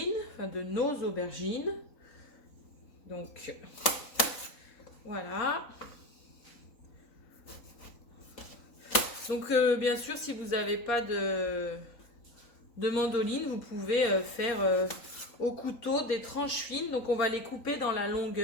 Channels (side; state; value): right; late; 3.9 ms